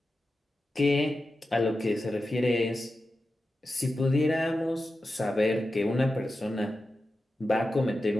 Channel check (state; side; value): normal; both; correlation 0.92